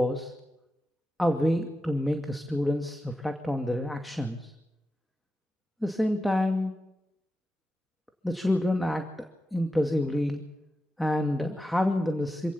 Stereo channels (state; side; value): normal; both; correlation 0.91